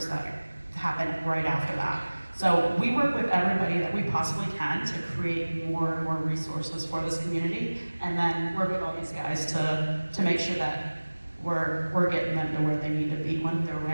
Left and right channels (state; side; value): inverted; both; correlation -1.00